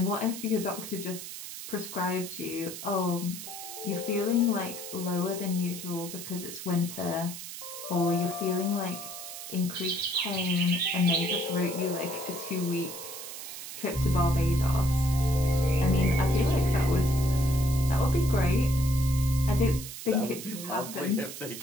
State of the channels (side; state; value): right; noise; hiss, 10 dB below the sound